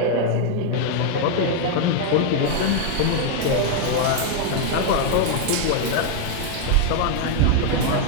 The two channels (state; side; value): different; both; correlation 0.00